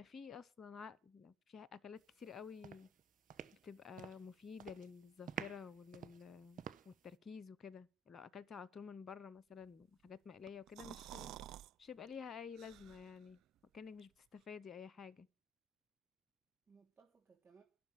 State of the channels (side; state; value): both; normal; correlation 0.59